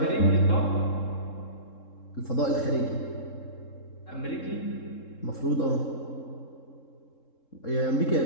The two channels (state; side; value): late; right; 3.7 ms